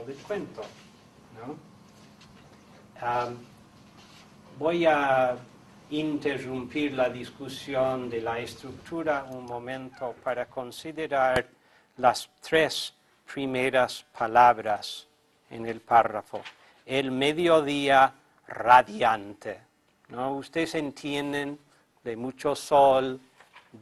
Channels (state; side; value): identical; both; correlation 1.00